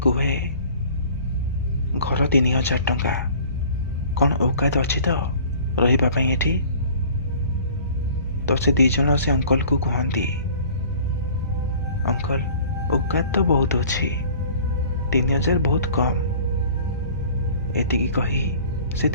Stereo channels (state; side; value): inverted; both; correlation -0.48